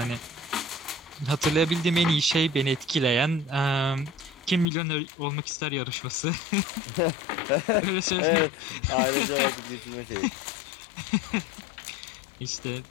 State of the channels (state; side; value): drops out; right; at 4.7 s